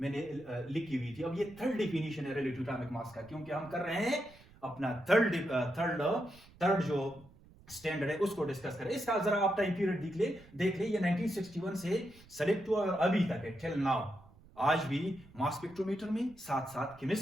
मैंने लिखी हुई थी, अब ये थर्ड डिफिनेशन है रिलेटिव एटॉमिक मास का, क्योंकि हम कर रहे हैं अपना थर्ड जो स्टैंडर्ड है उसको डिस्कस करें। इसका जरा आप टाइम पीरियड देख ले, ये 1961 से सेलेक्ट हुआ और अभी तक है, टिल नाउ। आज भी मास स्पेक्ट्रोमीटर में साथ साथ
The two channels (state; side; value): noise; right; rumble, 24 dB below the sound